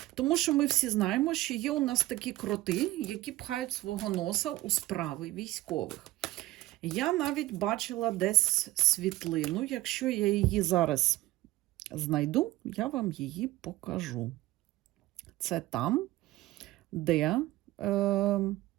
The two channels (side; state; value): left; quieter; 17.4 dB